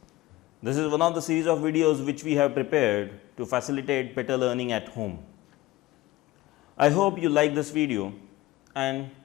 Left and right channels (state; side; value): quieter; right; 17.9 dB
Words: this is one of the series of videos which we have prepared to facilitate better learning at home. I hope you like this video and